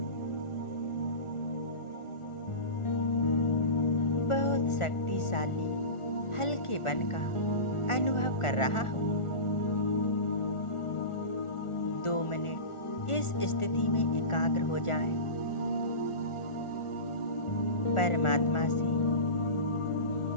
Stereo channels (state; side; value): late; right; 1.4 ms